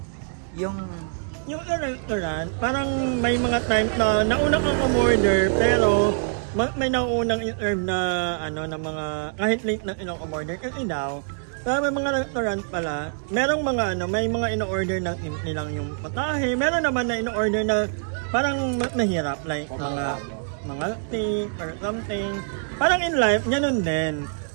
Yung restaurant, parang may mga time na nauna kang umorder, pero may naunang in-serve na na mga kahit late na in-order kasi daw may mga restaurant pala merong mga may mga in-order na nilang yung patahe, meron naman na in-order na parang mahirap like mga steak or something. Parang in life ganun din,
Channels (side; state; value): left; silent; digital silence